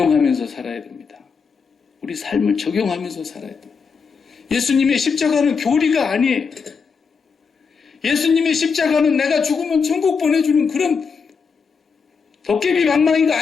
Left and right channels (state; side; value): quieter; right; 5.6 dB